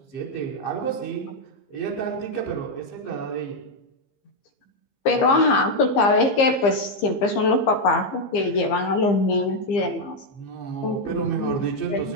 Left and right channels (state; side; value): late; right; 15 ms